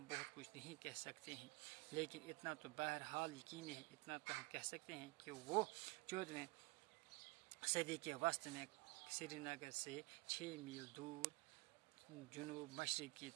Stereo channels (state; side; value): quieter; left; 24.7 dB